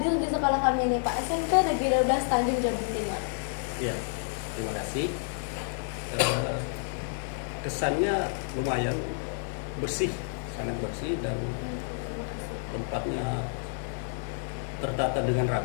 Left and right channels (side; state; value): right; silent; digital silence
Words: di sekolah kami ini Pak, SMP Negeri 12 Tanjung Jabung Timur. Ya, terima kasih. Kesannya lumayan bersih, sangat bersih dan tempatnya tertata dengan